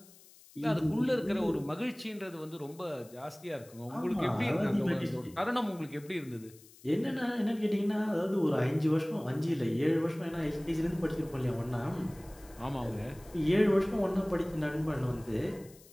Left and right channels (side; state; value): left; noise; hiss, 24 dB below the sound